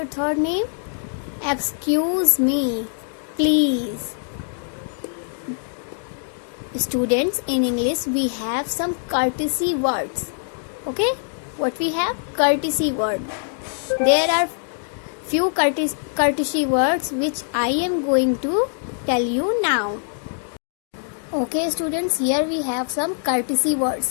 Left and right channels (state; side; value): silent; right; digital silence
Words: 3 name? Excuse me, please. Students, in English we have some courtesy words. Okay, what we have? Courtesy word. There are few courtesy words which I am going to tell you now. Okay students, here we have some courtesy